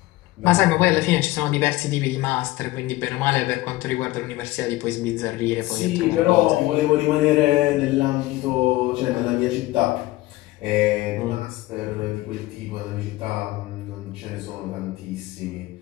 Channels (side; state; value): right; quieter; 18.2 dB